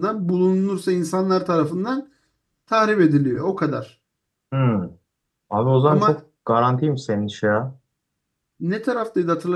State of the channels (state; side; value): identical; both; correlation 1.00